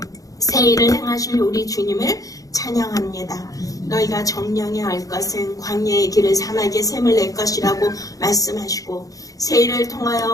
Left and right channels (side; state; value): right; late; 0.17 ms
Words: 일을 행하실 우리 주님을 찬양합니다. 너희가 정령에 알 것은 광야의 길을 사막의 샘을 낼 것이라고 말씀하시고, 새 일을 통하여